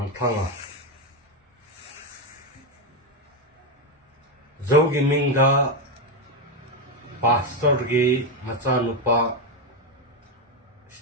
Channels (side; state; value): both; normal; correlation 0.08